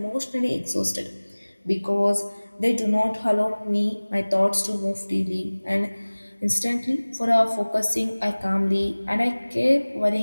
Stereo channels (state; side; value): inverted; both; correlation -1.00